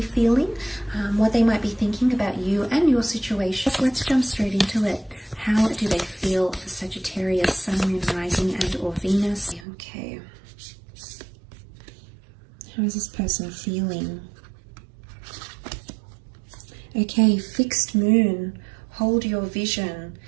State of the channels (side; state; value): left; drops out; at 9.7 s